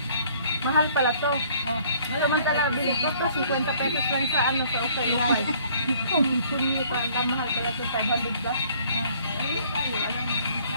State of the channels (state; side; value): inverted; both; correlation -0.58